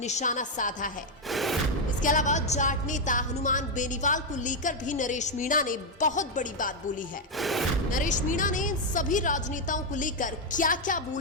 साधा है। इसके अलावा जाट नेता हनुमान बेनीवाल को लेकर भी नरेश मीणा ने बहुत बड़ी बात बोली है। नरेश मीणा ने सभी राजनेताओं को लेकर क्या क्या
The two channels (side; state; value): both; normal; correlation 0.02